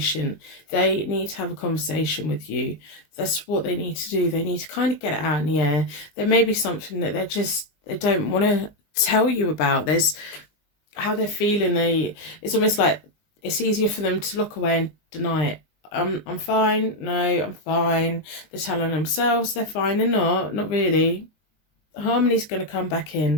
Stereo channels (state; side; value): late; right; 20 ms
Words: They need to have a conversation with you. That's what they need to do. They need to kind of get it out in the air. There may be something that they don't want to tell you about. There's how they're feeling. It's almost like it's easier for them to look away and deny it. I'm fine. No, I'm fine. They're telling themselves they're fine. They're not really. Harmony's going to come back